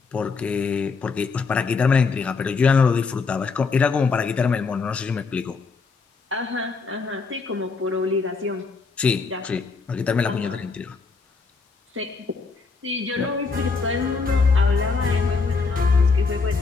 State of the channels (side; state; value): right; quieter; 4.7 dB